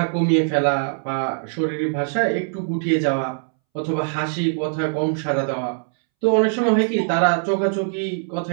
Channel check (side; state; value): left; silent; 64 dB below the other